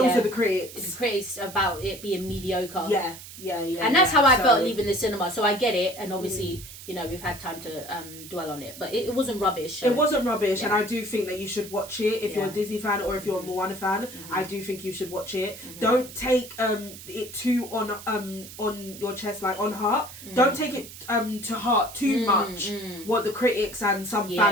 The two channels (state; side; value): noise; right; hiss, 15 dB below the sound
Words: the critics. The critics about it being mediocre. Yeah. And that's how I felt leaving the cinema. So I get it, and obviously, you know, we've had time to dwell on it, but it wasn't rubbish. So. It wasn't rubbish, and I do think that you should watch it if you're a Disney fan or if you're a Moana fan. I do think you should watch it. Don't take it too on your chest, like on heart. Don't take it to heart too much what the critics and some